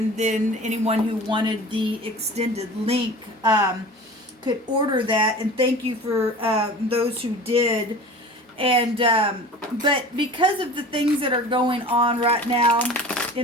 then anyone who wanted the extended link could order that, and thank you for those who did. And but because of the things that are going on right now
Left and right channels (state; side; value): normal; both; correlation 0.39